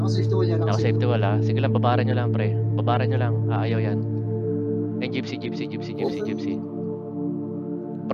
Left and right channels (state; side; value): identical; both; correlation 1.00